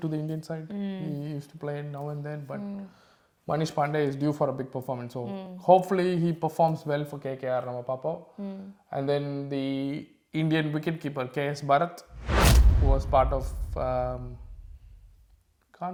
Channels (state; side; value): identical; both; correlation 1.00